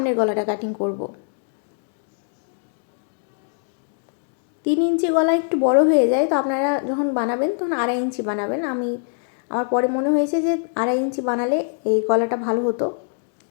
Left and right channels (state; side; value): silent; right; digital silence